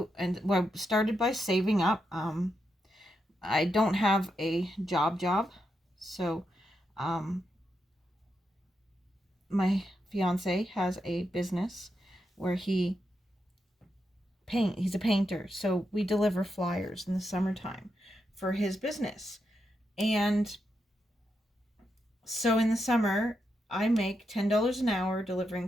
started by saving up. I don't have a job, so my fiance has a business where he's a painter, so we deliver flyers in the summertime for his business. And so in the summer I make $10 an hour delivering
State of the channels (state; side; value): normal; both; correlation 0.84